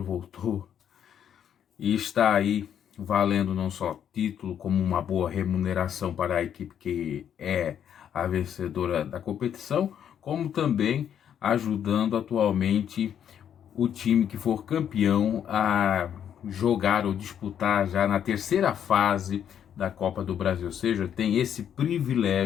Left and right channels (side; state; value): right; quieter; 9.1 dB